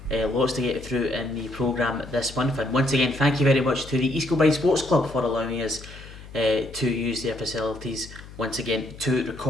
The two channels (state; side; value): noise; left; hum, 17 dB below the sound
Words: lots to get through in the programme this month, and once again, thank you very much to the East Kilbride Sports Club for allowing us to use their facilities once again to